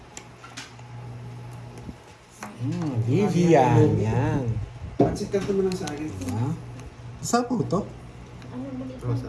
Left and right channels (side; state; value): both; identical; correlation 1.00